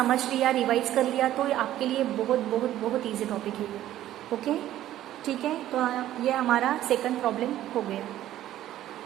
लिया, रिवाइज कर लिया तो आपके लिए बहुत बहुत बहुत ईजी टॉपिक है ये। ओके, ठीक है, तो ये हमारा सेकंड प्रॉब्लम हो गया।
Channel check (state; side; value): quieter; left; 13.1 dB